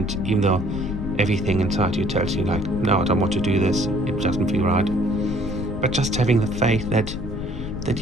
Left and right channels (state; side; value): noise; left; rumble, 8 dB below the sound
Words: even though everything inside you tells you like, no, I don't want to do this, it doesn't feel right, but just having the faith that